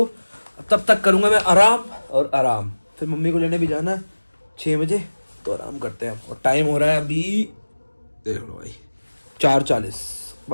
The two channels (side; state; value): both; inverted; correlation -1.00